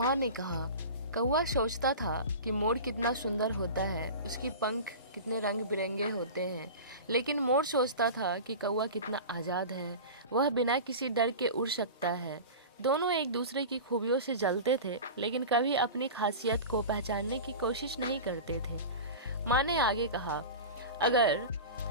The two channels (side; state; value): both; inverted; correlation -0.31